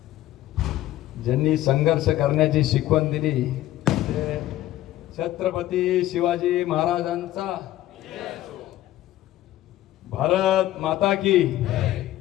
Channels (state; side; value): quieter; right; 14.3 dB